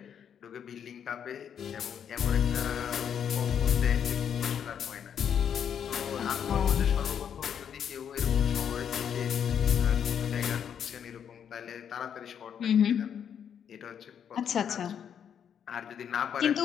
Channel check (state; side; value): quieter; right; 8.3 dB